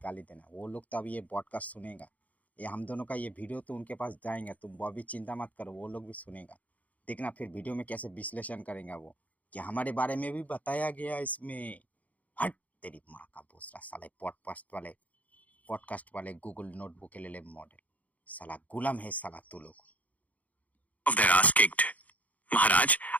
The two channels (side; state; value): right; late; 0.073 ms